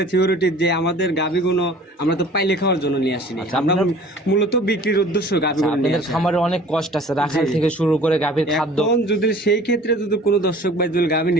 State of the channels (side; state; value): both; normal; correlation 0.47